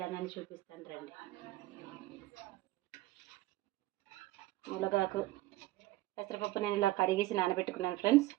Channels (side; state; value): left; quieter; 17.4 dB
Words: చూపిస్తాను రండి. మునగాకు, పెసరపప్పు నేను ఇలా కడిగేసి నానబెట్టుకున్నాను ఫ్రెండ్స్.